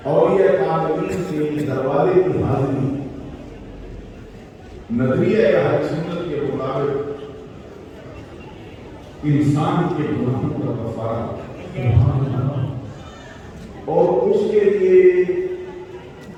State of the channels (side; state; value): both; identical; correlation 1.00